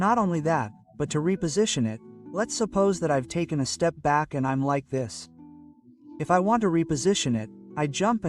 only that, but to reposition it, let's suppose that I've taken a step back and I'm like this. If I want to reposition it, I jump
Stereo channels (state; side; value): identical; both; correlation 1.00